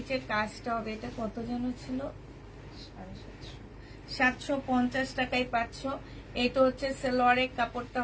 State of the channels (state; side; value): identical; both; correlation 1.00